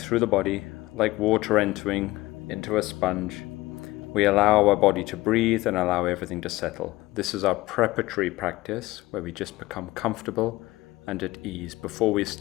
the body like water entering into a sponge. We allow our body to breathe and allow everything to settle. This is our preparatory practice where we just become comfortable and at ease before we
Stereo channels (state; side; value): quieter; right; 18.9 dB